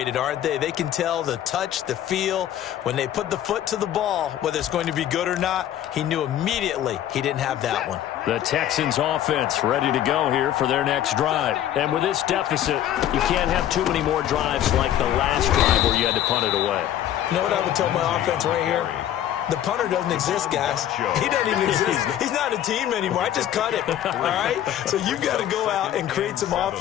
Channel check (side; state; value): right; quieter; 11.6 dB